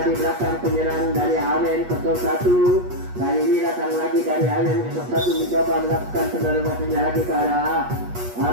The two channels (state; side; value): late; left; 8.3 ms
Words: di belakang penyerang dari AWN 01. Kali ini datang lagi dari AWN 01 mencoba melakukan penyeluruhannya lagi ke arah